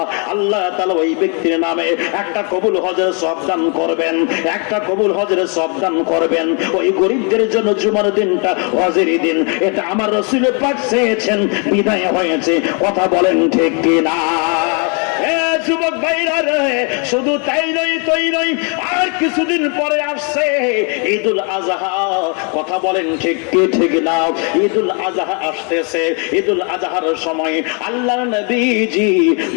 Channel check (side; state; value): right; quieter; 36.5 dB